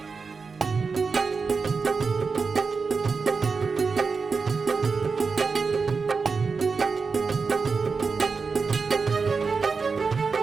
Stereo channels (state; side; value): quieter; left; 4.8 dB